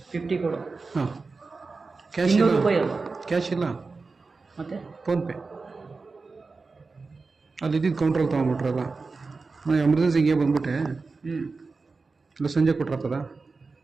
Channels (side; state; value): left; quieter; 4.1 dB